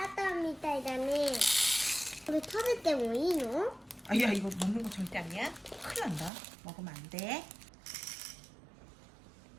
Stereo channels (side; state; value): left; drops out; at 6.3 s